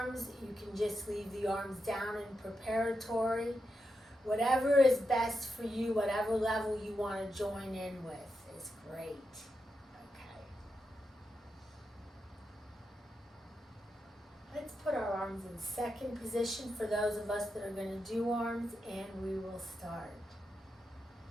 you can just leave the arms down in preparatory. Whatever is best for you, whatever level you want to join in with is great. Okay. Let's put our arms in second position for those of us that are going to do arms, and we will start.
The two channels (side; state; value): both; normal; correlation 0.86